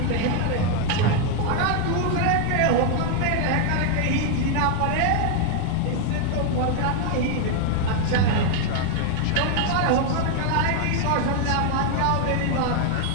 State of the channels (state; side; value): different; both; correlation 0.00